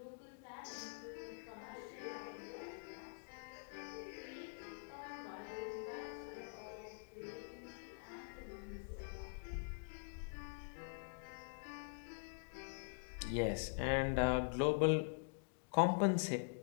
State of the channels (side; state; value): right; silent; digital silence